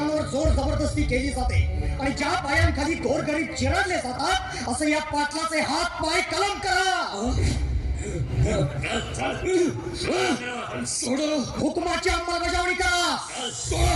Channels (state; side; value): identical; both; correlation 1.00